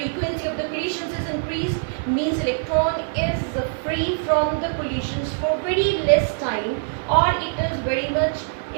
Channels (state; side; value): silent; left; 63 dB below the other